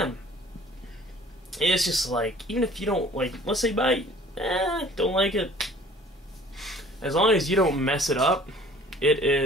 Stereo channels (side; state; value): both; normal; correlation 0.51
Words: It's just like, even if you don't like, let's say buy, don't like it, as long as you don't mess it up, it